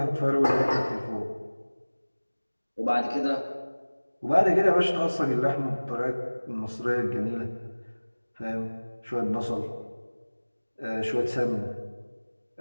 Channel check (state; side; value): inverted; both; correlation -1.00